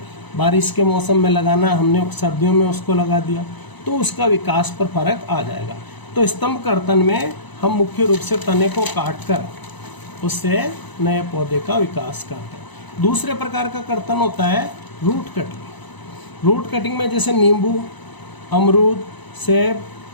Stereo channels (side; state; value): right; late; 1.0 ms